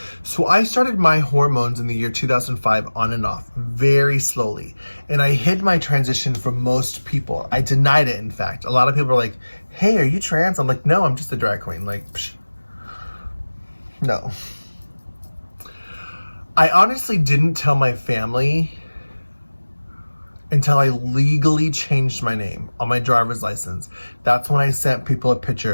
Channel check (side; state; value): both; inverted; correlation -1.00